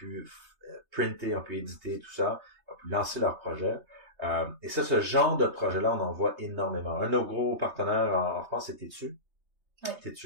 printer, ils ont pu éditer tout ça, ils ont pu lancer leur projet. Et ça, ce genre de projet-là, on en voit énormément. Un de nos gros partenaires en France, c'est Tétu. Ouais.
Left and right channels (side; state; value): left; late; 3.2 ms